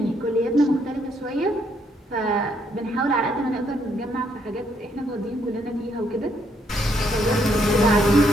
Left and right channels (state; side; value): normal; both; correlation 0.72